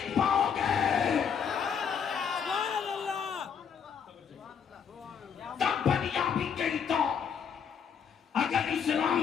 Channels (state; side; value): quieter; right; 7.1 dB